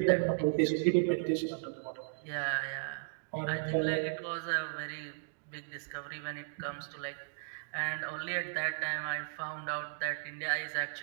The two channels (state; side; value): silent; left; digital silence